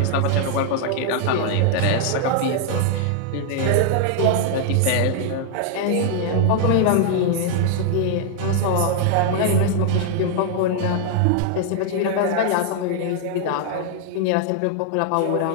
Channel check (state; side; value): different; both; correlation 0.00